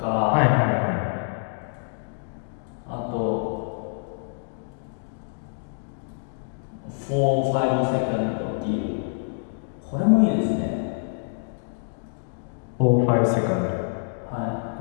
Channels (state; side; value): silent; right; digital silence